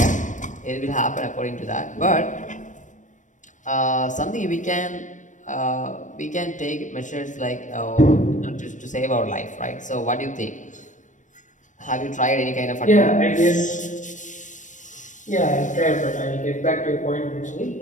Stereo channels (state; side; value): late; right; 0.37 ms